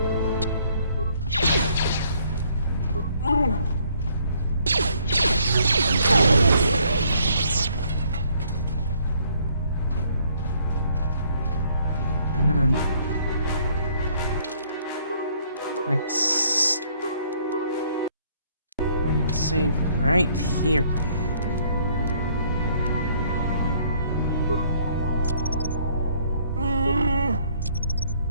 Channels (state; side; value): inverted; both; correlation -0.64